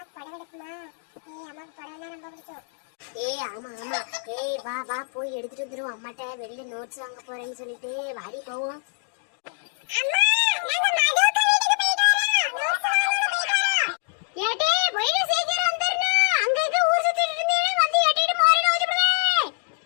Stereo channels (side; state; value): right; silent; digital silence